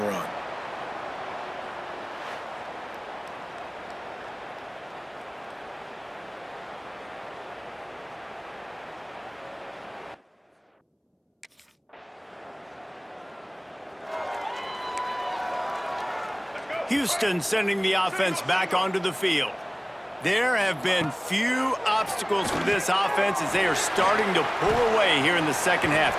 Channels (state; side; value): identical; both; correlation 1.00